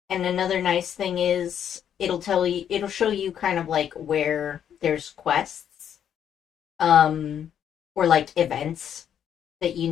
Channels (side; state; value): right; quieter; 9.2 dB